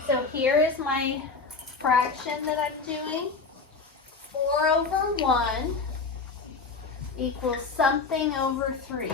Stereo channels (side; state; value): right; quieter; 4.4 dB